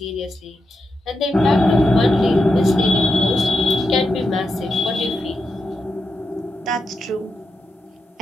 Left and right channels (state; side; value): normal; both; correlation 0.87